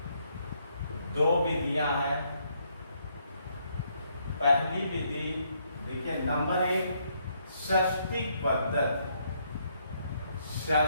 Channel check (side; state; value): both; inverted; correlation -0.72